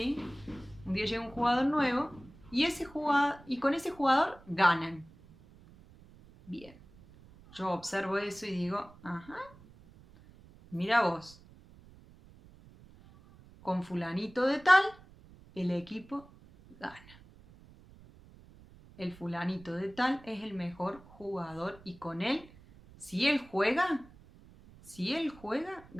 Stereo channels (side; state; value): right; noise; rumble, 23 dB below the sound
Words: Un día llega un jugador nuevo y con ese jugador ganan. Bien. Yo observo eso y digo, ajá, mira vos, con fulanito de tal, el equipo gana. El fulanito de tal es el mejor jugador y con él, si él juega,